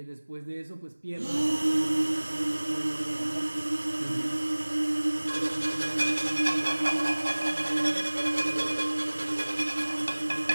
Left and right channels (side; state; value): both; inverted; correlation -1.00